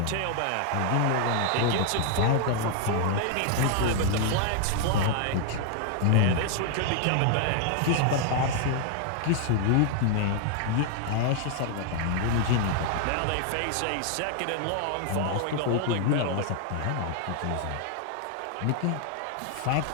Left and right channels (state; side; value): different; both; correlation 0.00